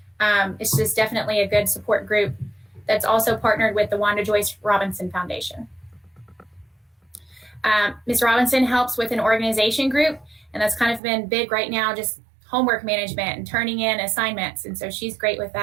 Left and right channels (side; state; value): left; drops out; at 11.0 s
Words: It's just definitely a good support group that's also partnered with the Wanda Joyce Robinson Foundation. Ms. Robinson helps with an organization group, and that's kind of been big right now, just homework management and turning in assignments. And so she's great with